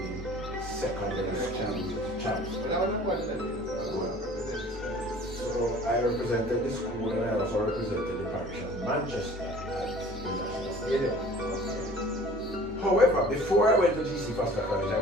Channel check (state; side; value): normal; both; correlation 0.48